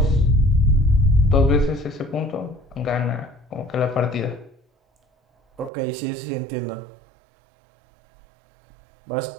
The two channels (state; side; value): drops out; left; at 5.7 s